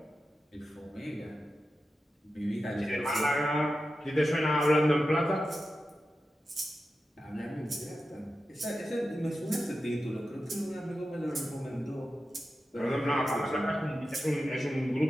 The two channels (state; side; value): normal; both; correlation 0.92